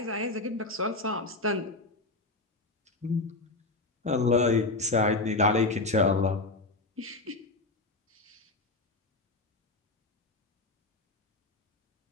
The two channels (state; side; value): quieter; right; 3.1 dB